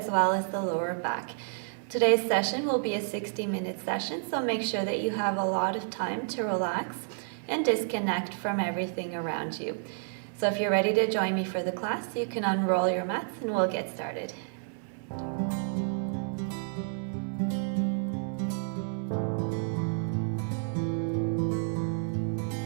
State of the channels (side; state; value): left; silent; 58 dB below the other